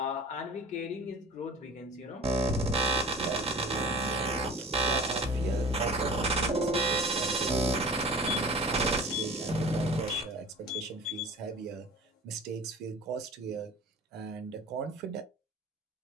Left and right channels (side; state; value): both; normal; correlation 0.41